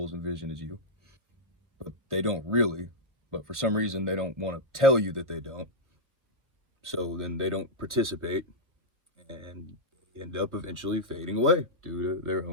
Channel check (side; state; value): left; late; 1.2 ms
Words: and vision as you, but they don't really. But for some reason, they don't want to tell you that they don't. So then they don't participate and end up eventually fading away due to their